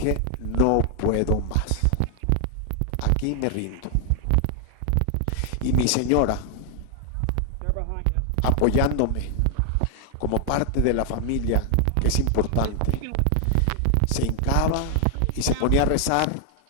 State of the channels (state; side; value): different; both; correlation 0.00